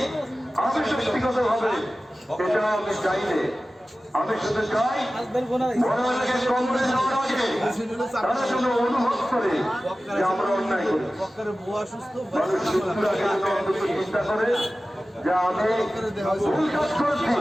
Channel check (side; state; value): both; normal; correlation 0.96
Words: আমি ব্যক্তিগত ভাবে এটা আমি চাইলে, আমি শুধু চাই বড়কে কংগ্রেস হওয়ার আগে তারা যেন অনুভব করে যে আমরা অন্যায় করি। মানুষ সুস্থ আগে অন্তত চিন্তা করে যে আমি ভুল কাজ করেছি,